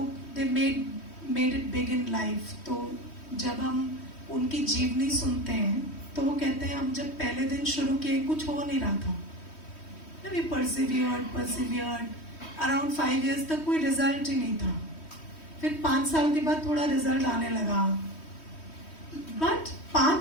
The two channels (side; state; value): right; late; 3.1 ms